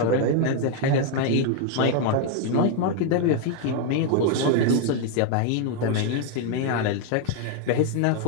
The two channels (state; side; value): different; both; correlation 0.01